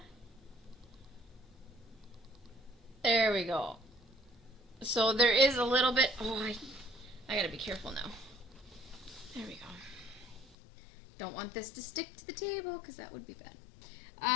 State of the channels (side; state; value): right; drops out; at 10.6 s